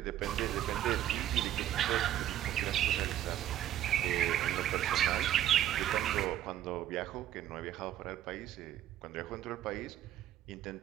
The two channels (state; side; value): quieter; left; 11.9 dB